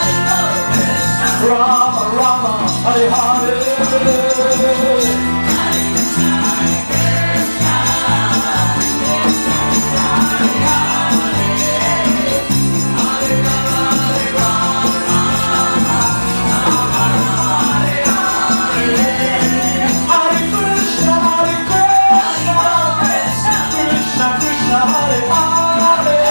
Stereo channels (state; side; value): inverted; both; correlation -1.00